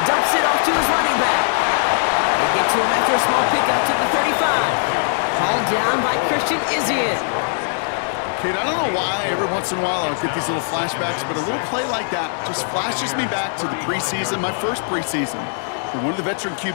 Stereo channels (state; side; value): silent; right; digital silence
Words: Dumps it off to his running back. They get to him after a small pickup to the 35. Hauled down by Christian Izzian. Kate, I don't know why every once in a while I'll get these little flashbacks, but a little play like that just flashes me back to the preseason, my first preseason. And one of the veteran